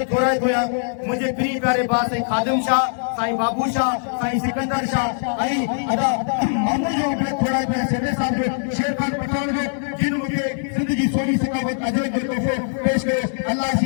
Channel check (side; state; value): right; silent; 65 dB below the other